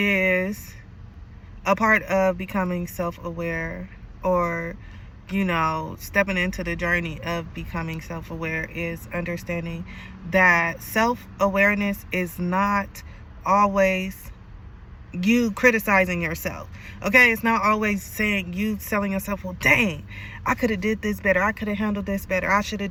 a part of becoming self-aware, or, you know, stepping into the journey of becoming self-aware, is understanding that self-awareness is not always you criticizing yourself. Okay, it's not always saying you telling yourself, well, dang, I could have did this better, I could have handled this better, I should have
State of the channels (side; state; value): both; identical; correlation 1.00